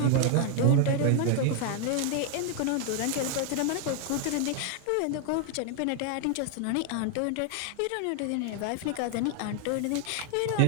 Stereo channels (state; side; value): different; both; correlation 0.00